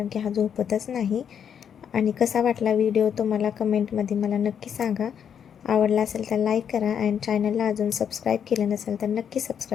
की हा झोपतच नाही. आणि कसा वाटला व्हिडिओ तुम्हाला कमेंटमध्ये मला नक्की सांगा. आवडला असेल तर लाईक करा, आणि चॅनलला अजून सबस्क्राईब केलं नसेल तर नक्की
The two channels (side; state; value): right; quieter; 8.1 dB